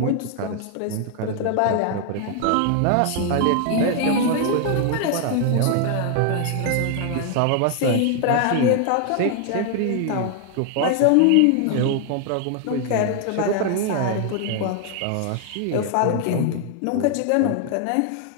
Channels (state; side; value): different; both; correlation 0.00